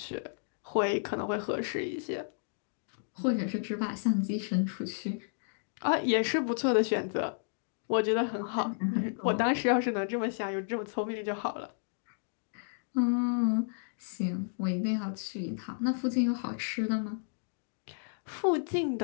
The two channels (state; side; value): silent; right; digital silence